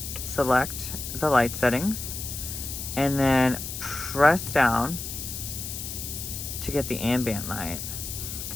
Select the light settings and then press down to get the ambient light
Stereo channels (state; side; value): noise; left; hiss, 7 dB below the sound